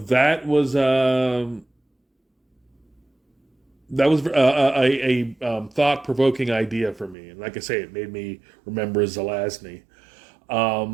was a thought provoking idea for me. And like I say, it made me remember Zelazny.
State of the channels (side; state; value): left; drops out; at 7.2 s